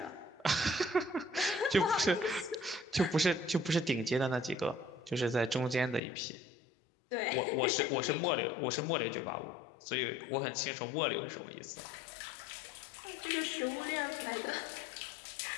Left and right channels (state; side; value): drops out; right; at 6.0 s